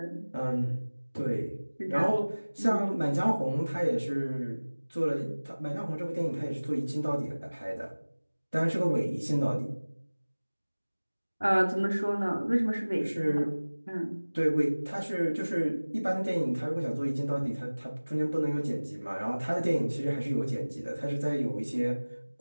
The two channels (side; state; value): both; inverted; correlation -1.00